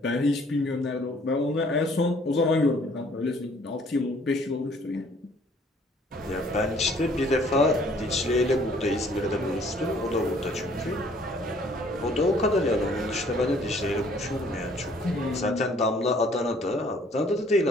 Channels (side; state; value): both; normal; correlation 0.59